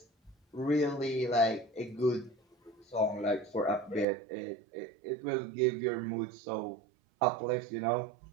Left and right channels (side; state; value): left; drops out; at 4.0 s